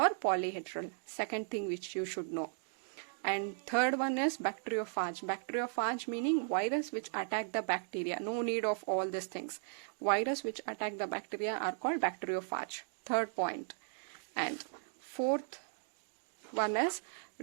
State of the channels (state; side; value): silent; left; digital silence